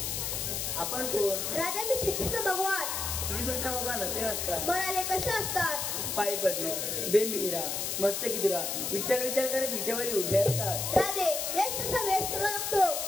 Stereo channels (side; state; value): left; noise; hiss, 2 dB below the sound